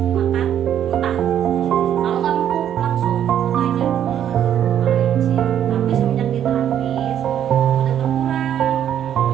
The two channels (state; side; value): quieter; left; 10.0 dB